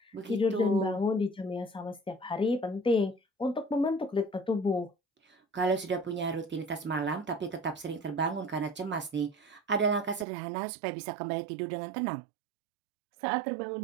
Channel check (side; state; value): left; drops out; at 10.2 s